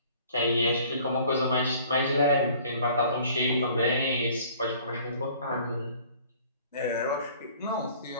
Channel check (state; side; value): inverted; both; correlation -0.53